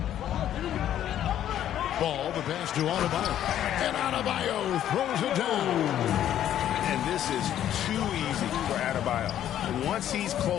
Ball, the pass to Adebayo. And Adebayo throws it down. And this is too easy for Adebayo. Once he's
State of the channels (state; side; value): quieter; right; 11.1 dB